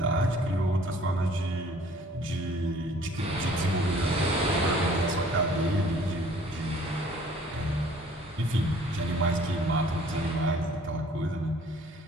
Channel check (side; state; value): both; normal; correlation 0.55